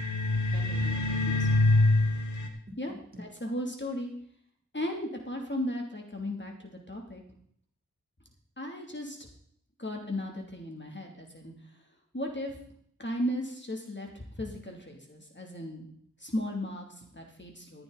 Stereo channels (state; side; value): normal; both; correlation 0.65